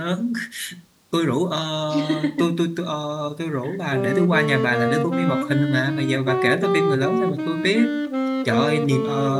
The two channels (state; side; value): identical; both; correlation 1.00